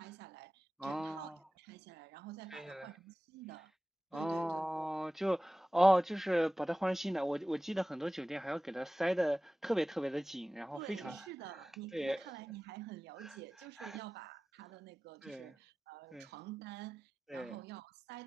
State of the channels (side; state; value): both; normal; correlation 0.96